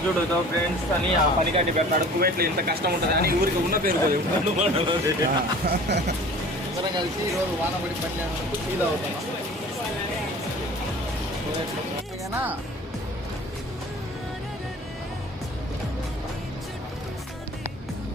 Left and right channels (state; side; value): normal; both; correlation 0.44